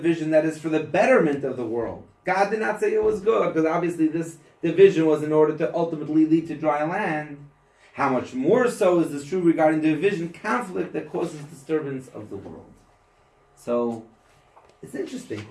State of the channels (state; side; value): identical; both; correlation 1.00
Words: that is for the betterment of the world, God did not say it was good, because obviously this division was in order to ultimately lead to dry land. How much more so is this true regarding division, conflict that causes disturbance of the world? So, it's interesting.